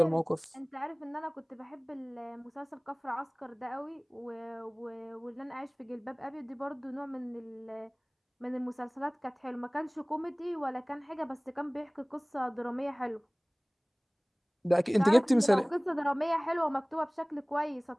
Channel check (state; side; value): identical; both; correlation 1.00